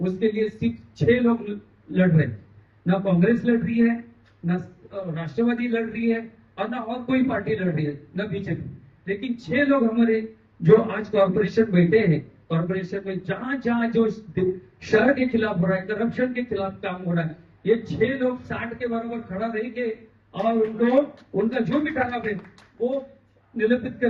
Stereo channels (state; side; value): identical; both; correlation 1.00